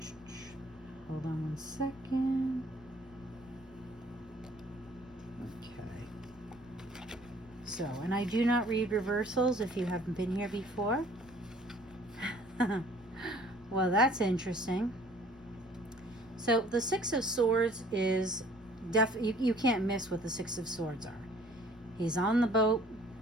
Hold on one second. Okay. So, and I do not read reversals if you haven't been here before. Well, that's interesting. So the Six of Swords is you can't miss what the Six of Swords are. He's on the boat.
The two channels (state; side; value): noise; right; rumble, 27 dB below the sound